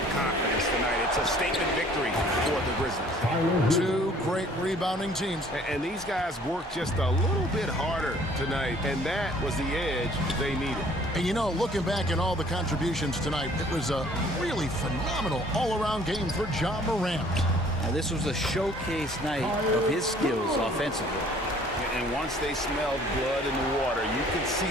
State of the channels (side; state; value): both; normal; correlation 0.56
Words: confidence tonight. It's a statement victory for the Grizzlies. 2 great rebounding teams. And these guys worked just a little bit harder tonight, and that was the edge they needed. And you know, looking back at all the contributions tonight, it was a really phenomenal all-around game for Ja Morant. Now, this was a showcase night of his skills offensively. And once they smelled blood in the water, you could see